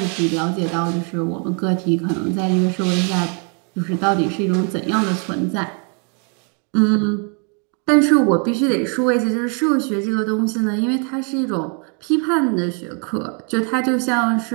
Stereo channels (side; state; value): left; quieter; 39.0 dB